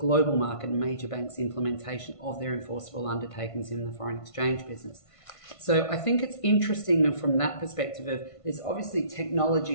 market and major banks' implementation of their enforceable undertakings in the foreign exchange business. So I think it's interesting from that perspective of there's obviously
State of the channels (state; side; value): late; right; 1.5 ms